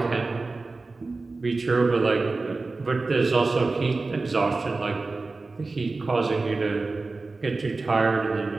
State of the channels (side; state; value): left; quieter; 3.6 dB